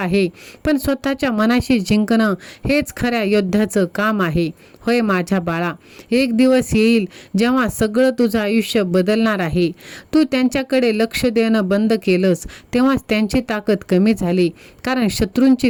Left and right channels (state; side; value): identical; both; correlation 1.00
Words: पण स्वतःच्या मनाशी जिंकणं हेच खऱ्या योद्ध्याचं काम आहे. होय माझ्या बाळा, एक दिवस येईल जेव्हा सगळं तुझं आयुष्य बदलणार आहे. तू त्यांच्याकडे लक्ष देणं बंद केलंस तेव्हाच त्यांची ताकद कमी झाली, कारण शत्रूंची